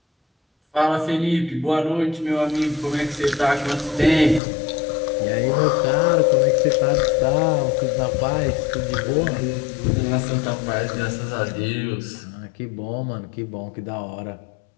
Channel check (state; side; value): drops out; right; at 4.4 s